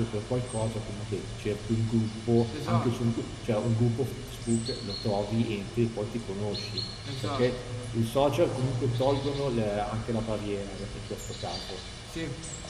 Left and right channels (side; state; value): both; identical; correlation 1.00